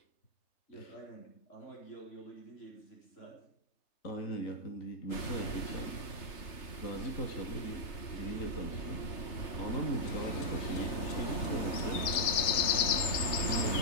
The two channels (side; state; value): right; late; 3.3 ms